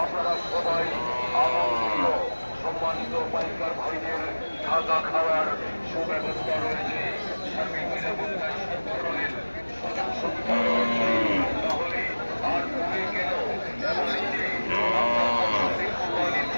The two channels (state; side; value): inverted; both; correlation -1.00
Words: সম্মানিত পাইকার ভাইদের থাকা খাওয়ার সুব্যবস্থা রয়েছে।